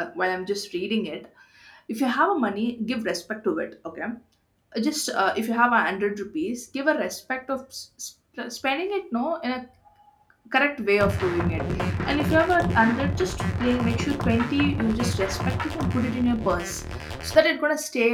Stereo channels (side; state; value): both; identical; correlation 1.00